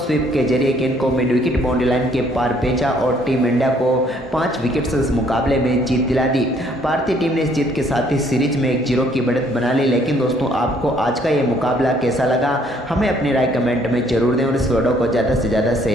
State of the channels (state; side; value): normal; both; correlation 0.64